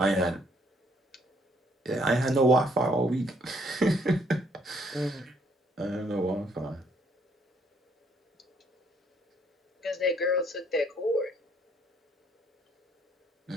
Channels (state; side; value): normal; both; correlation 0.66